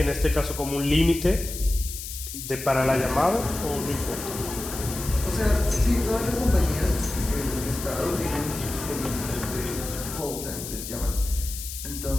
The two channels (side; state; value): left; noise; hiss, 9 dB below the sound